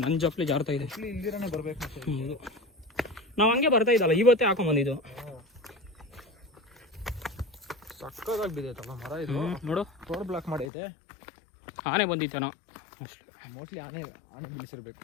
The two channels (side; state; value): right; drops out; at 10.7 s